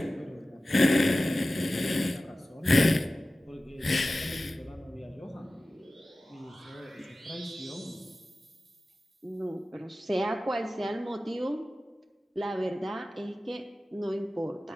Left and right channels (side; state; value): both; normal; correlation 0.96